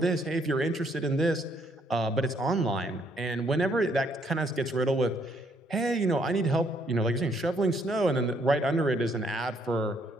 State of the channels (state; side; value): normal; both; correlation 0.69